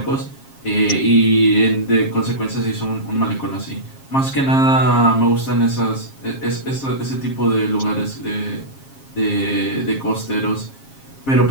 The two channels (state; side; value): late; right; 7.4 ms